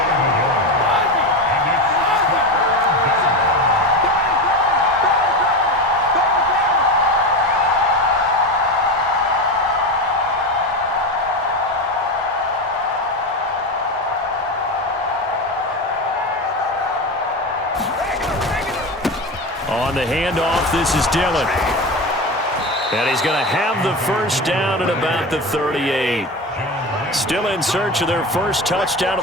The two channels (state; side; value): normal; both; correlation 0.21